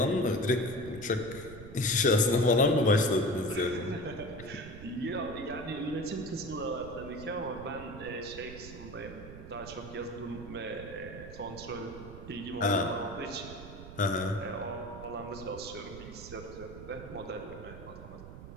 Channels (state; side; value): noise; right; rumble, 13 dB below the sound